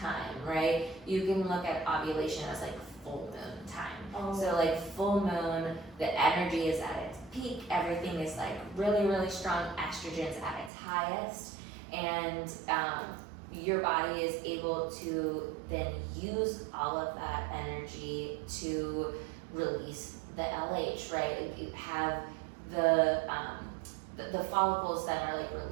right? You can look at ovulation as like full moon time. So like full moon, the energy is at its peak, everything is like really, really strong, estrogen's at its highest, and your body is able to then use all of that energy to release the LH, right? You have the the follicles that are like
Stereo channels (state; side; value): drops out; left; at 10.7 s